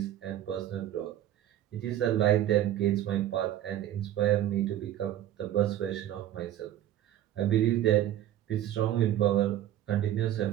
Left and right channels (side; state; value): left; quieter; 12.3 dB